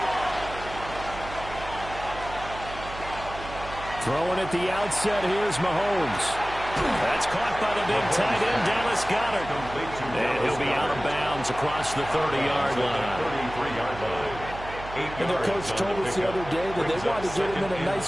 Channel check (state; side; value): noise; right; hum, 12 dB below the sound